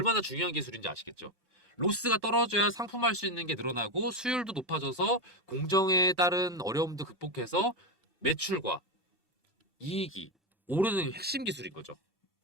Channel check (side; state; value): both; normal; correlation 0.10